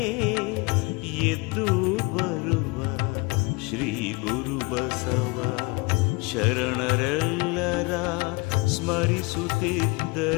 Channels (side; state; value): right; quieter; 27.0 dB